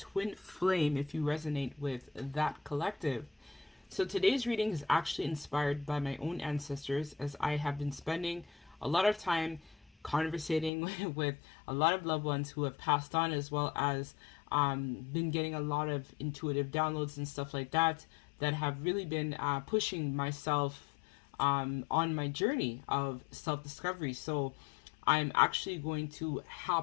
flame if you resonate with that collective. So today's reading is actually inspired by my own ancestors, as I have been spending a lot of time conversating with a lot of loved ones who have passed on, as well as been getting a lot of intuitive downloads and stuff like that have really been pushing myself on my journey of self-discovery. So I'm actually going to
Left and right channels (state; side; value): drops out; right; at 10.7 s